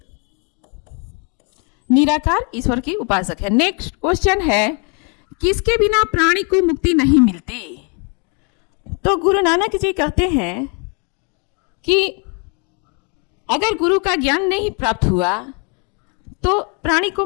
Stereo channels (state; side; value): quieter; right; 36.3 dB